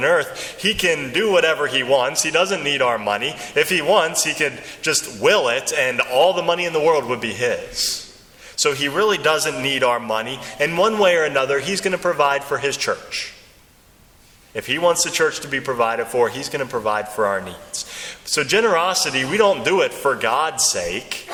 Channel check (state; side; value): identical; both; correlation 1.00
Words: earth. He can do whatever He wants. He doesn't need our money. If He wants, He could just will it, and all the money in the world would be His. So He really doesn't need our money. And one way or another, He's going to provide for His church. If He wants the church to be provided for, He's going to provide for our needs. So generosity, we don't do it for God's sake.